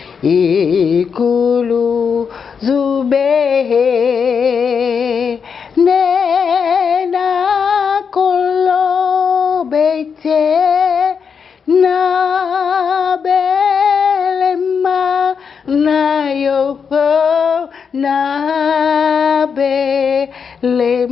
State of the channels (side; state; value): right; quieter; 6.3 dB